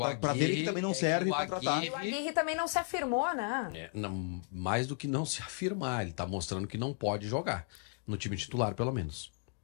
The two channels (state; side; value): quieter; right; 38.1 dB